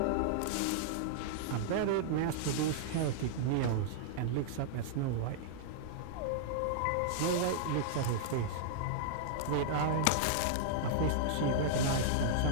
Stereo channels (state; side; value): different; both; correlation -0.01